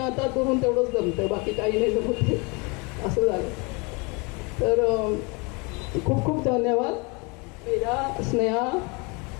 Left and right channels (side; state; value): right; quieter; 29.7 dB